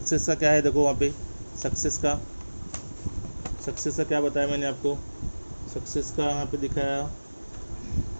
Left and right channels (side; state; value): both; inverted; correlation -1.00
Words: का क्या है, देखो वहाँ पे सक्सेस का क्या बताया मैंने आपको, सक्सेस का यहाँ पे दिखाया,